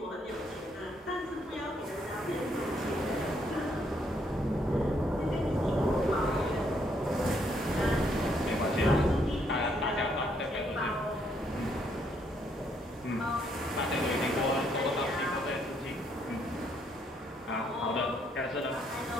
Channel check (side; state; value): both; normal; correlation 0.71